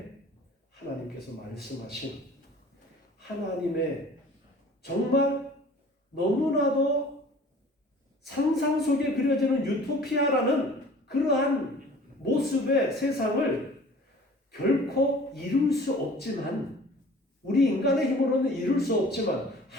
하나님께서 말씀하신 하나님의 정말 너무나도 상상 속에 그려지는 유토피아라는 그러한 모습의 세상을 결코 이룰 수 없지만, 우리 인간의 힘으로는 이룰 수 없지만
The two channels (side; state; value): both; normal; correlation 0.47